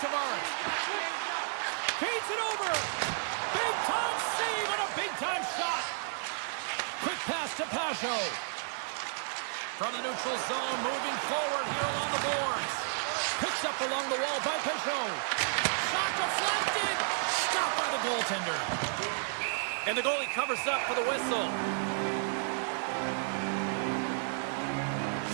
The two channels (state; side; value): silent; left; 56 dB below the other